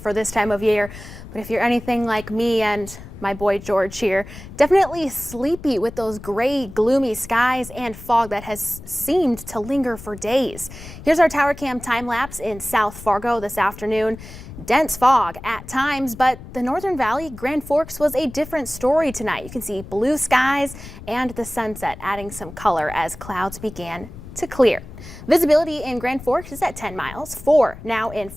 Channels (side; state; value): left; noise; rumble, 15 dB below the sound